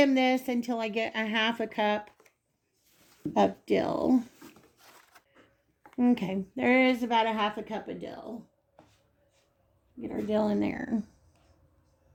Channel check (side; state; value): both; identical; correlation 1.00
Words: this until I get a half a cup of dill. Okay, there is about a half a cup of dill. Get our dill in there.